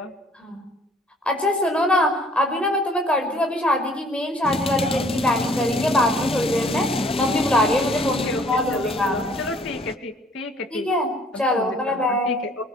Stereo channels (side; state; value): both; normal; correlation 0.57